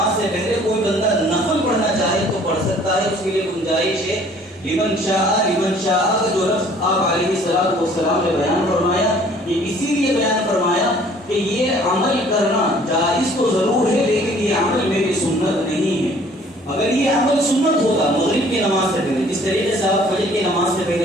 سے پہلے کوئی بندہ نفل پڑھنا چاہے تو پڑھ سکتا ہے، اس کے لیے گنجائش ہے۔ لمن شاء، لمن شاء کا جو لفظ آپ علیہ الصلوۃ والسلام نے بیان فرمایا یہ اسی لیے بیان فرمایا کہ یہ عمل کرنا جائز تو ضرور ہے لیکن یہ عمل میری سنت نہیں ہے۔ اگر یہ عمل سنت ہوتا مغرب کی نماز سے پہلے، جس طریقے سے آپ فجر کی نماز سے پہلے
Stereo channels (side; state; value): both; normal; correlation 0.55